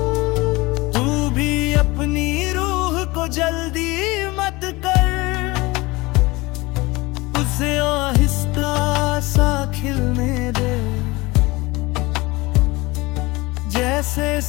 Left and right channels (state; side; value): quieter; right; 22.4 dB